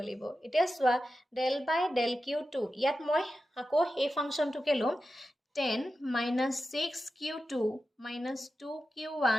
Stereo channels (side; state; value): both; normal; correlation 0.92